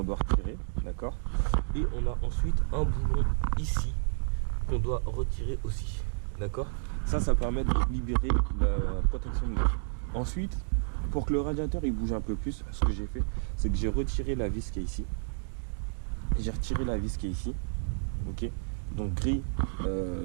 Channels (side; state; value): left; silent; digital silence